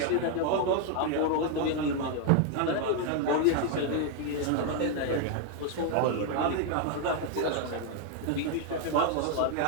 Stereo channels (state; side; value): different; both; correlation 0.00